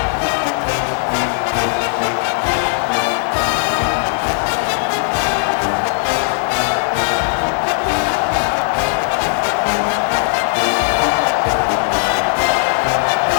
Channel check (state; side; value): silent; right; digital silence